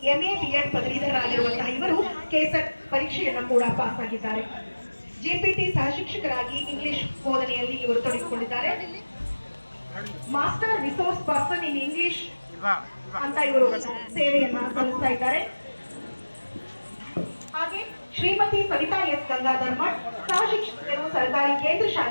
ಎಂಎ ಬಿಎಡ್ ಪದವೀಧರರಾಗಿರುವಂತಹ ಇವರು ಕೆಸೆಟ್ ಪರೀಕ್ಷೆಯನ್ನ ಕೂಡ ಪಾಸ್ ಆಗಿದ್ದಾರೆ. ಜೆಪಿಟಿ ಸಹ ಶಿಕ್ಷಕರಾಗಿ ಇಂಗ್ಲಿಷ್ ಬೋಧನೆಯಲ್ಲಿ ಇವರು ತೊಡಗಿಕೊಂಡಿದ್ದಾರೆ. Master resource person in English ಅಂತ ಇವರು ಸೇವೆಯನ್ನ ಸಲ್ಲಿಸ್ತಾ ಇದ್ದಾರೆ. ಹಾಗೆ ಶ್ರೀಮತಿ ಸವಿತಾ ಎಸ್ ಗಂಗಾಧರ್ ಮಠ್ ಸಹ ಶಿಕ್ಷಕರು ಸರ್ಕಾರಿ ಕೇಂದ್ರ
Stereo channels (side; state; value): both; inverted; correlation -1.00